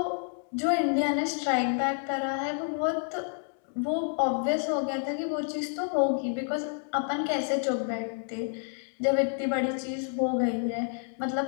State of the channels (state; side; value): silent; right; 58 dB below the other